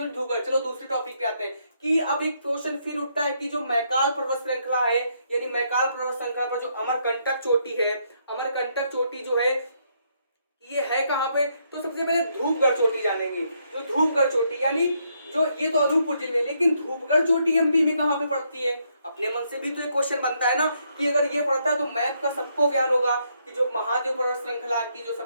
धूपगढ़। चलो दूसरे टॉपिक पे आते हैं कि अब एक क्वेश्चन फिर उठता है कि जो मैकाल पर्वत श्रृंखला है, यानी मैकाल पर्वत श्रृंखला पर जो अमरकंटक चोटी है, अमरकंटक चोटी जो है ये है कहाँ पे, तो सबसे पहले धूपगढ़ चोटी जानेंगे। जो धूपगढ़ चोटी यानी जो ये तो अनूपपुर जिले में, लेकिन धूपगढ़ चोटी एमपी में कहाँ पे पड़ती है, अपने मन से भी तो एक क्वेश्चन बनता है ना कि अगर ये पड़ता है तो मैप का सबको ज्ञान होगा कि जो महादेव पर्वत श्रृंखला की जो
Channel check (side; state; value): both; inverted; correlation -0.75